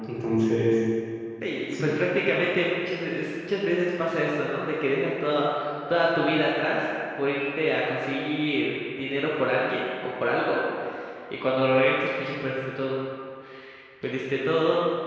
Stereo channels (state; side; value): identical; both; correlation 1.00